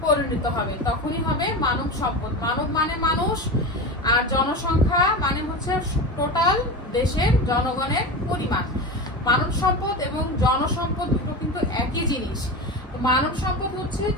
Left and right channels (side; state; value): both; normal; correlation 0.24